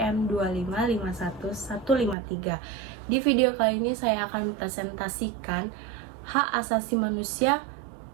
2551153. Di video kali ini saya akan mempresentasikan hak asasi manusia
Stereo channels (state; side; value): drops out; left; at 2.1 s